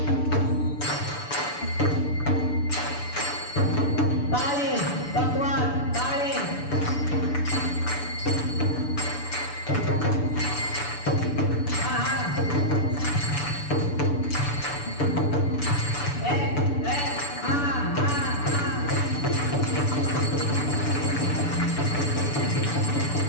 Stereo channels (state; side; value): late; right; 6.9 ms